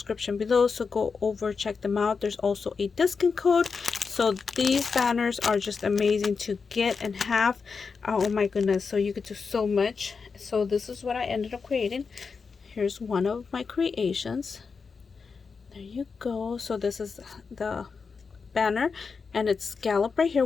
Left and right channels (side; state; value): right; quieter; 5.2 dB